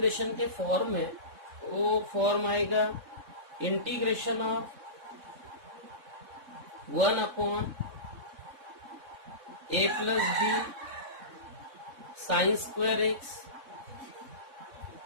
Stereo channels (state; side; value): late; left; 3.6 ms